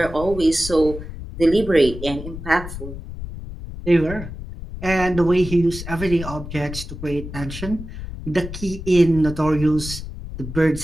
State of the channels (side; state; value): left; noise; rumble, 10 dB below the sound